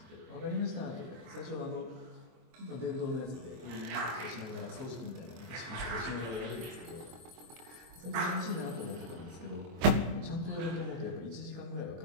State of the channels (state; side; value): late; left; 24 ms